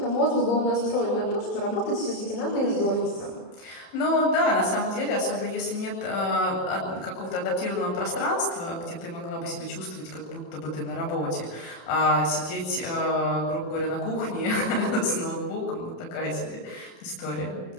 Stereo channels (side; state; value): right; late; 30 ms